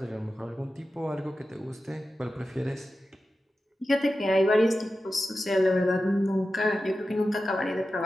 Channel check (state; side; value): normal; both; correlation 0.93